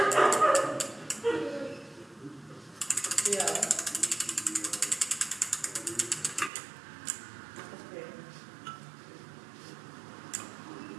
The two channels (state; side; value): drops out; left; at 6.5 s